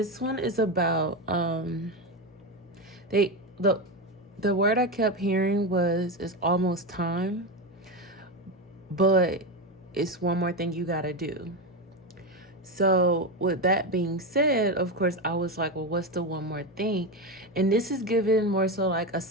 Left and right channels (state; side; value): normal; both; correlation 0.15